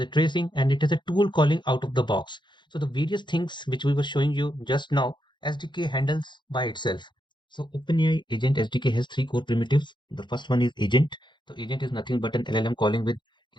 tracing, and it has a tool calling out of the box. So the various things which we were showing you just now, SDK handles by itself. So OpenAI Agent SDK has three core primitives. The first one is agent. So agent is nothing but an LLM calling with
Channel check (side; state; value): right; late; 0.22 ms